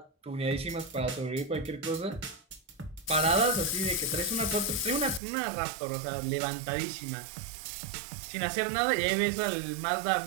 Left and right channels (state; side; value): drops out; left; at 5.2 s